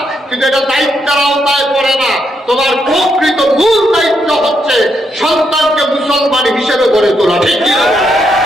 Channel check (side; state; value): both; normal; correlation 0.78